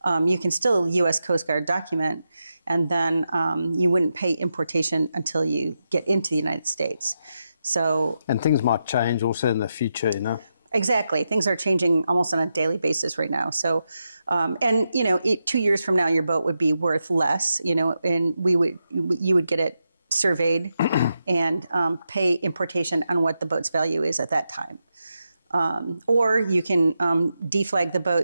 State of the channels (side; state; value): both; inverted; correlation -0.87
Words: you can still U.S. Coast Guard document, and then you wouldn't pay importation until you get into the United States. So, and things might change also in the future, Exactly. Things are changing almost on a daily basis right now. So, 2 years from now, your boat would be worth less, and you would get it surveyed and pay importation on what the boat's value is at that time. Or you can deflag the